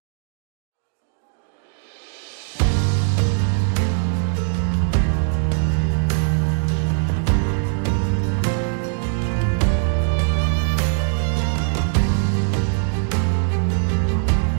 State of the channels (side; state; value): left; silent; digital silence